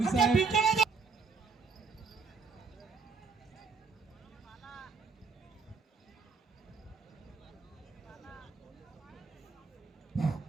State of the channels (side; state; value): left; quieter; 4.7 dB